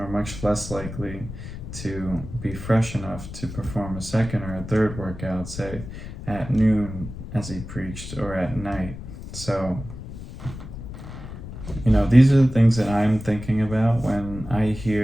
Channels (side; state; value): left; noise; rumble, 11 dB below the sound